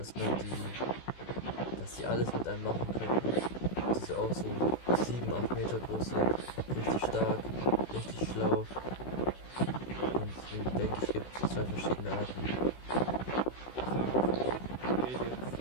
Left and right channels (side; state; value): right; late; 16 ms